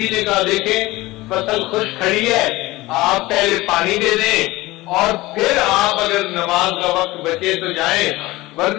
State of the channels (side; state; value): right; quieter; 19.5 dB